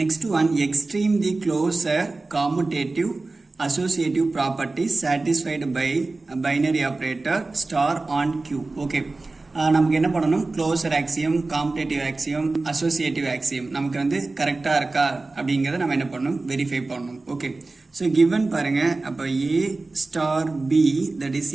one extreme the closer commutative associative property satisfied by a binary operator star on Q okay நமக்கு என்ன பண்ணணும் closure axiom commutative axiom associative axiom நமக்கு வந்து கரெக்டாக இருக்கா அப்படிங்கிறத நம்ம என்ன பண்ணணும் வெரிஃபை பண்ணணும் ஓகே ஸோ கிவன் பாருங்க அப்போ A star B that is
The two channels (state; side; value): quieter; left; 3.4 dB